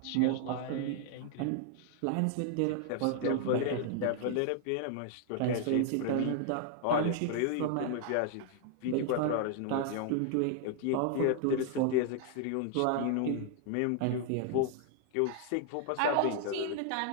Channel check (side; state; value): both; different; correlation 0.00